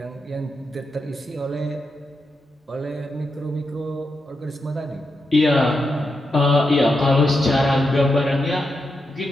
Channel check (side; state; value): both; normal; correlation 0.86